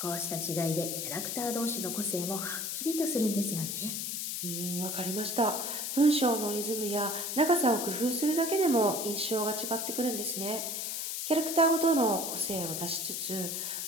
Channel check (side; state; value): left; noise; hiss, 3 dB below the sound